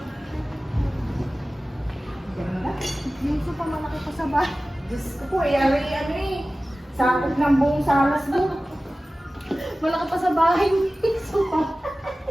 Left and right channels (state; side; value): normal; both; correlation 0.96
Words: Dito pa malaki pa sa bahay. Diyos ko po, ano eh. Sakop ng buong salas mo. Malaki pa sa bahay. Supa.